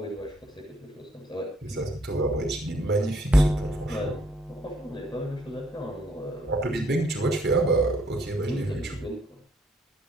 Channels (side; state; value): both; normal; correlation 0.67